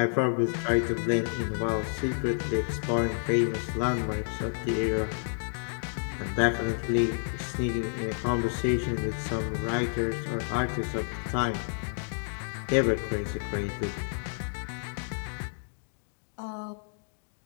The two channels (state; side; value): silent; right; digital silence